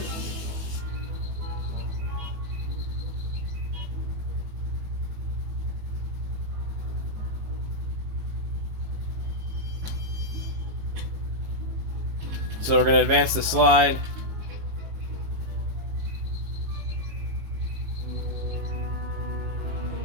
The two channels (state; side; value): late; left; 18 ms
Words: So we're going to advance the slide.